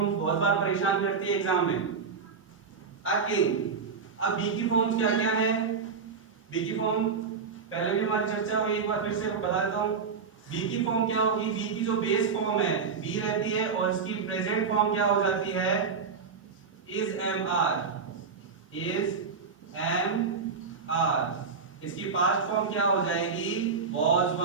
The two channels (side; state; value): left; quieter; 5.4 dB